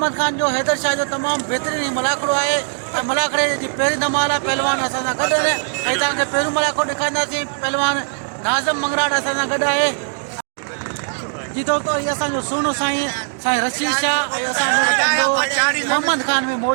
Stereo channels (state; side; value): silent; left; digital silence